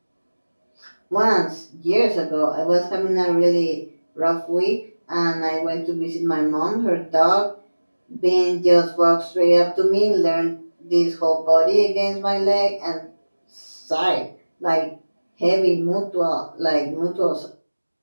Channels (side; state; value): both; inverted; correlation -1.00